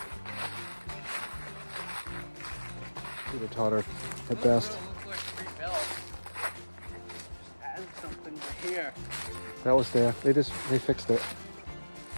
Peter Totter at best. Add something to here. That was there. They fixed it.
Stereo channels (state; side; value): inverted; both; correlation -1.00